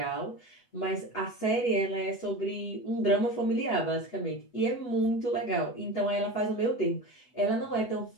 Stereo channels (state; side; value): late; right; 8.2 ms